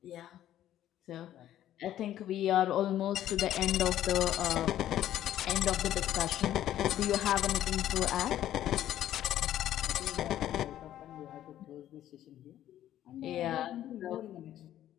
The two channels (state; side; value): quieter; right; 12.3 dB